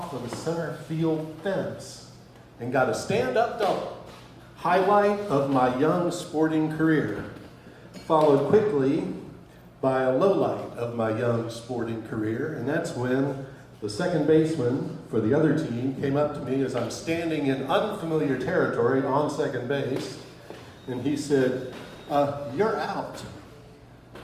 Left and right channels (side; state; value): both; identical; correlation 1.00